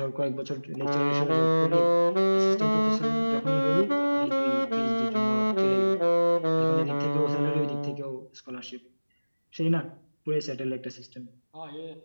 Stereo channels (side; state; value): both; inverted; correlation -1.00